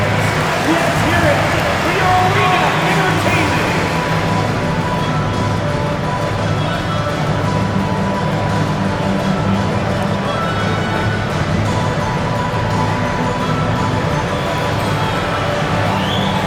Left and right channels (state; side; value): identical; both; correlation 1.00